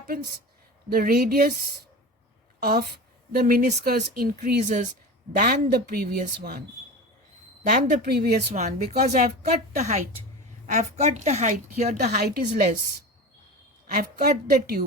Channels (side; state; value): both; normal; correlation 0.30